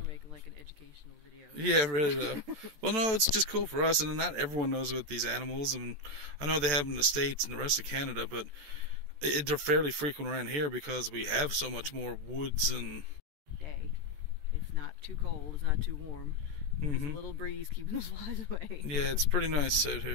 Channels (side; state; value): left; late; 14 ms